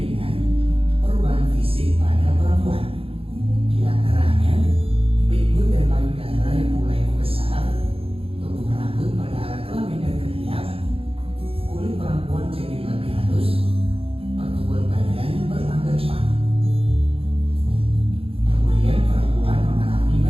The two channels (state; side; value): late; left; 0.27 ms